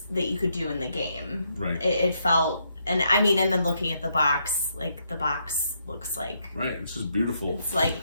that you could do in the game. Right. It felt, and I mean, and then looking at the box, like the box looks like, right, it's just beautiful. It's like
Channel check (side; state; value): both; inverted; correlation -0.76